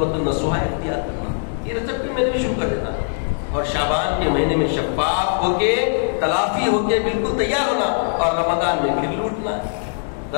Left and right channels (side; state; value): right; silent; digital silence